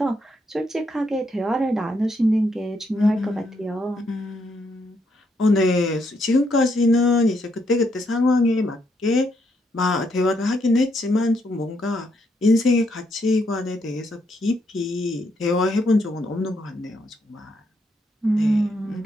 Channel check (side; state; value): both; normal; correlation 0.76